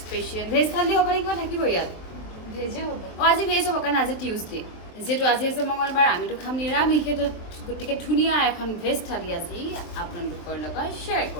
স্পেচিয়েল ভেজ থালি হ'ব নে কিবা থাকিব ইয়াত? ভেজে হ'ব। আজি ভেজ হ'ব কাৰণ আজি টিউজডে যিহেতু আজি আছে মঙলবাৰ আমিতো খাম নিৰামিষ। গতিকে ধুনীয়া এখন ভেজ থালি আজি আপোনালোকৰ লগত শ্বেয়াৰ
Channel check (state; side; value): late; right; 23 ms